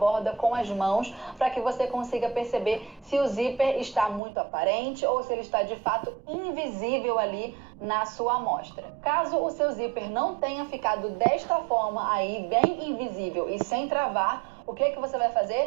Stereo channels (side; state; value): left; drops out; at 4.2 s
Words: com as mãos para que você consiga perceber se o zíper está muito aparente ou se ele está de fato invisível ali na sua amostra. Caso o seu zíper não tenha ficado desta forma aí, bem invisível e sem travar, o que você vai